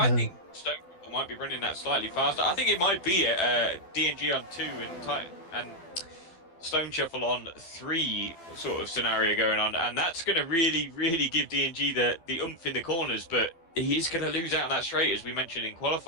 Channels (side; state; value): right; late; 12 ms